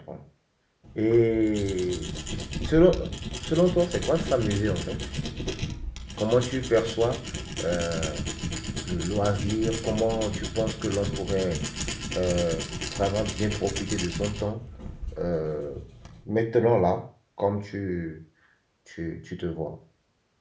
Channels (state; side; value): identical; both; correlation 1.00